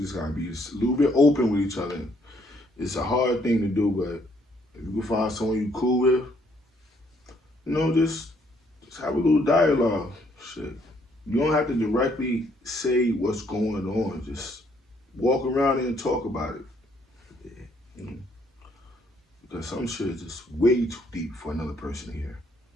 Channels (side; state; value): both; normal; correlation 0.68